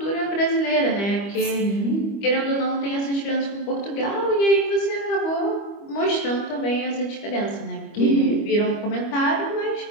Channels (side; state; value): right; late; 25 ms